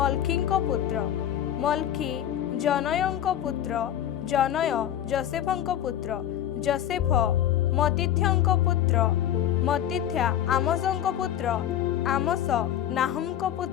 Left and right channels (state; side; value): quieter; right; 11.0 dB